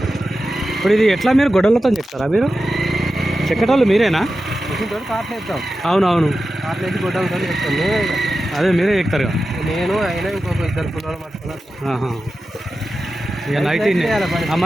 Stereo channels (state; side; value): normal; both; correlation 0.92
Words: ఇప్పుడు ఇది ఎట్లా మీరు గొడవలతో చెప్తారా? మీరు చెక్కటోళ్ళు మీరేనా? కార్లు వేస్తాం. అవునవును కార్లు వేసి గొడ్డలతో చెప్తాం మేమే. అదే మీరే ఎక్కుతారు. నేను అయినా ఇంకొక 2 పిల్లలు పట్టుకున్నాను. ఇక నైట్